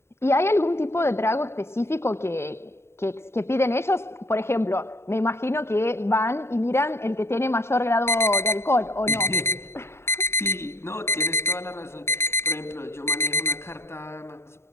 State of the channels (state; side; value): late; right; 0.12 ms